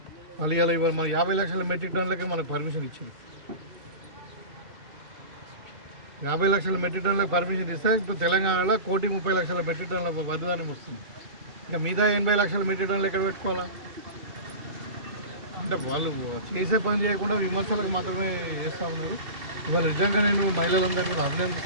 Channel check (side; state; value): left; late; 2.3 ms